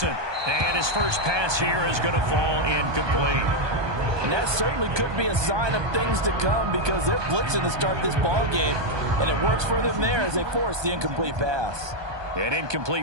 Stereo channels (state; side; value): late; left; 1.2 ms